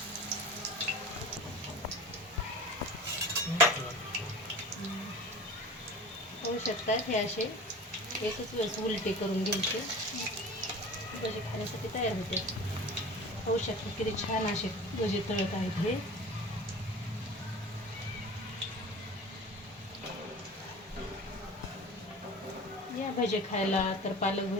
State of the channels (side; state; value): both; normal; correlation 0.37